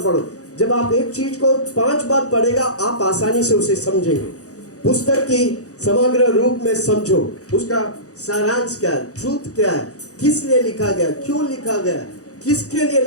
पढ़ो। जब आप एक चीज को 5 बार पढ़ेगा आप आसानी से उसे समझेंगे। पुस्तक की समग्र रूप में समझो, उसका सारांश क्या है, ट्रूथ क्या है, किस लिए लिखा गया, क्यों लिखा गया, किसके लिए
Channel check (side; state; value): right; late; 0.66 ms